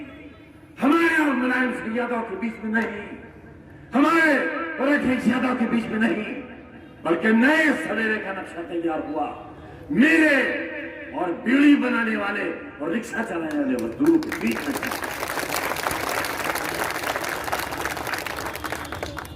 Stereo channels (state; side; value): identical; both; correlation 1.00